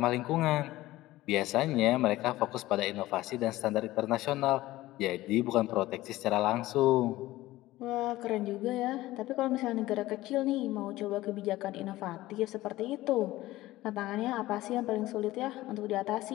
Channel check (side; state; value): right; quieter; 17.0 dB